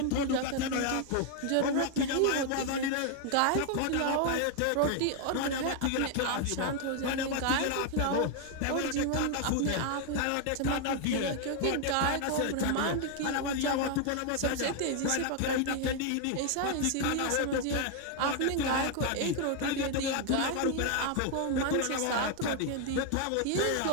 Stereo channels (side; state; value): both; different; correlation 0.00